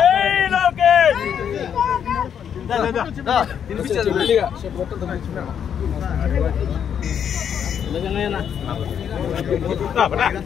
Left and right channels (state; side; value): quieter; right; 8.3 dB